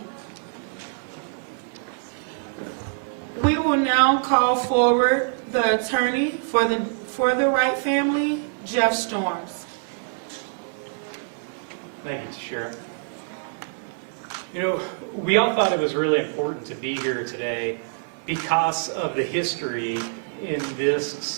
We will now call forward the attorney for the Wright family, Jeff Storms. Thank you, Tashira. You know, we all thought it was really important to be here today because of the history in this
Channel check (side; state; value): left; silent; digital silence